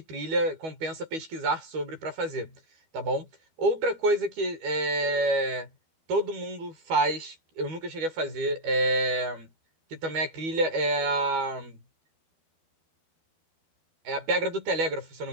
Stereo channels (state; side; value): late; left; 12 ms